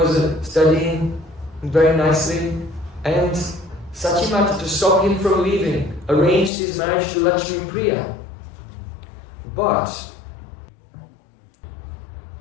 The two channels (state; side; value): drops out; right; at 6.5 s